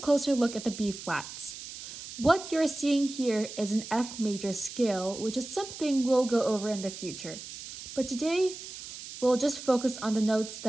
look at the B flats. What you're seeing here is an F major scale, which is something we'll go over in the future. But today, we'll just focus on the notes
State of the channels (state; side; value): noise; right; hiss, 12 dB below the sound